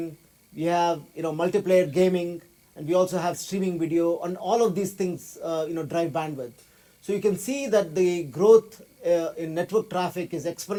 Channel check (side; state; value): both; identical; correlation 1.00